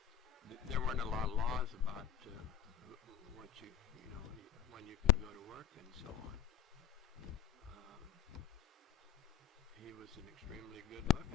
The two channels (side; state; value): right; quieter; 10.6 dB